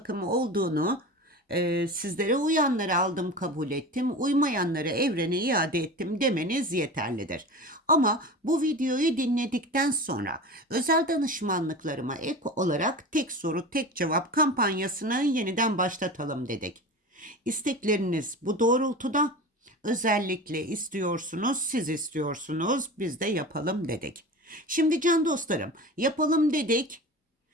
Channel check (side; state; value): both; normal; correlation 0.31